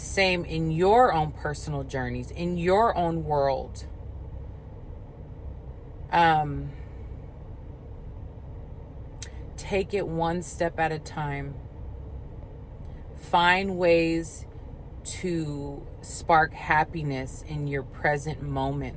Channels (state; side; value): identical; both; correlation 1.00